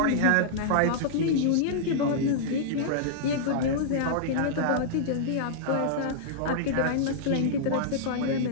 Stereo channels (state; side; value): different; both; correlation -0.02